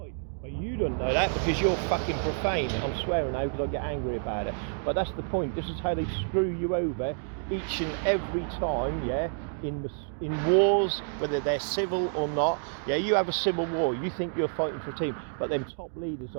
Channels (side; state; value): left; silent; digital silence